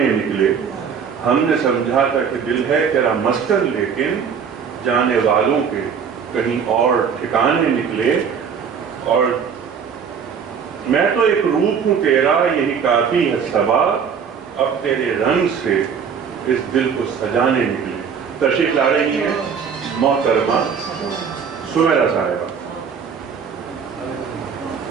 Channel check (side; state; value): left; quieter; 6.8 dB